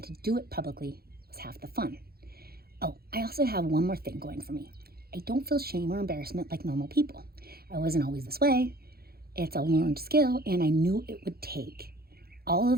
to do it publicly was half the fun. Oh, I also have one more thing going for me. I don't feel shame or embarrassment like normal people. I wasn't always this way. It's a learned skill, and I knew it would take all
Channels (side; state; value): left; late; 0.45 ms